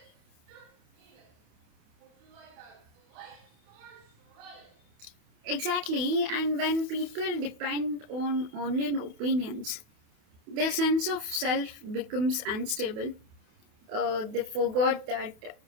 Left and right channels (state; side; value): late; left; 28 ms